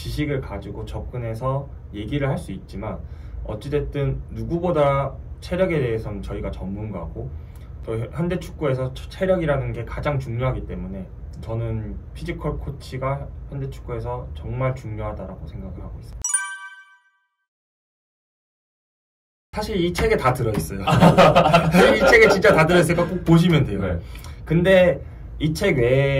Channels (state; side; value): identical; both; correlation 1.00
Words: 가지고 접근해서 얘기를 할 수 있지만, 어찌됐든 누구보다 체력에 대해서는 저희가 전문가고, 또 현대 축구에서 체력이라는 게 가장 중요하기 때문에 저는 피지컬 코치가 현대 축구에서 정말 중요하다고 생각을 하고 있습니다. 사실 이 책에 다 들어있어요. 이 책에 진짜 다 들어있으니까 꼭 보시면 돼요. 네. 근데 이 책